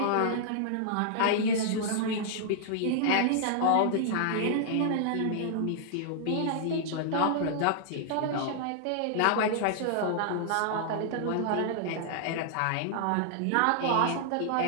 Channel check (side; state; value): both; different; correlation -0.01